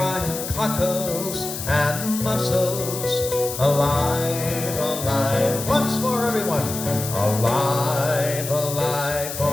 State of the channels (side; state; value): left; noise; hiss, 7 dB below the sound